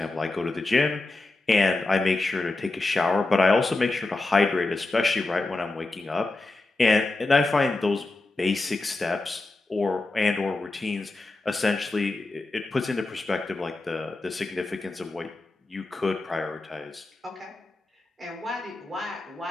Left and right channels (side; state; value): right; quieter; 3.1 dB